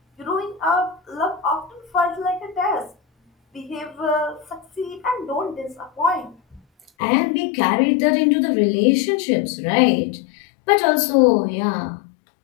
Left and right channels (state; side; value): drops out; right; at 6.9 s